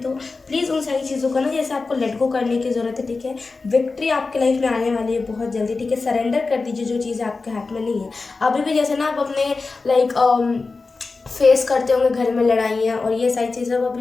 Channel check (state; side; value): quieter; right; 4.0 dB